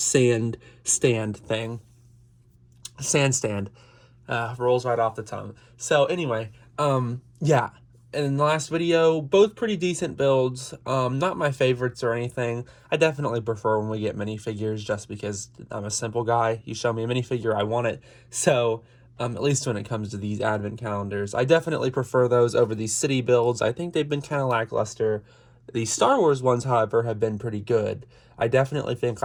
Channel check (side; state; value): both; identical; correlation 1.00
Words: stand. Rolls right off the tongue. So, anyway, yeah. In the last video, both pretty decent builds. Not my favorites or anything. I definitely prefer when we get minifigures just because I'm a simple guy. You show me a minifigure, I want it. So, at least when it comes to these advent calendars, I definitely prefer those over these city builds. I think they've been kind of lackluster. The Star Wars ones, however, have been pretty good. I definitely think